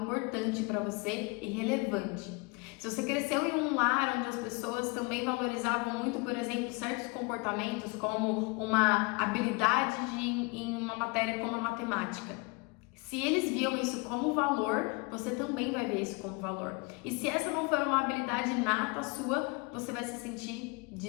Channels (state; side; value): quieter; right; 28.7 dB